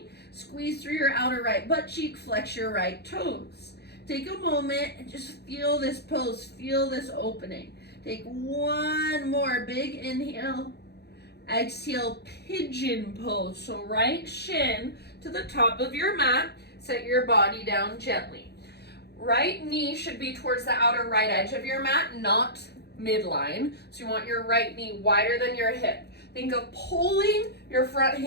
Squeeze through your outer right butt cheek, flex your right toes. Take a moment and just feel this pose, feel this opening. Take one more big inhale. Exhale, pigeon pose. So right shin to the top of your mat, set your body down gently. Right knee should be towards the outer right edge of your mat, not midline. So you want your right knee wider than your hip. Think of pulling your front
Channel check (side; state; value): right; late; 0.48 ms